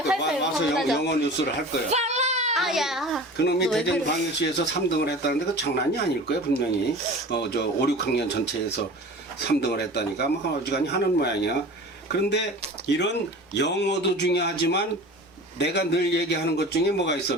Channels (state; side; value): normal; both; correlation 0.37